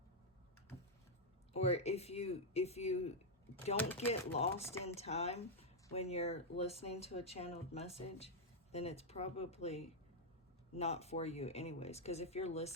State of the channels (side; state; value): both; normal; correlation -0.02